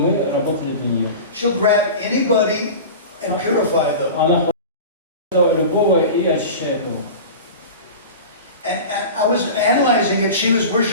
работали для нее. She'll grab anybody and purify them. Она хочет любого и очищает его. And I was analyzing it, she was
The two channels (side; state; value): both; inverted; correlation -0.32